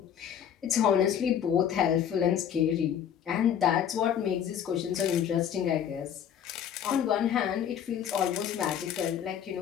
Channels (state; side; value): quieter; right; 9.1 dB